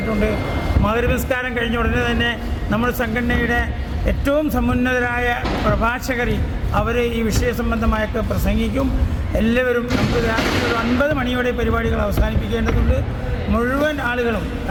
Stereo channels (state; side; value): identical; both; correlation 1.00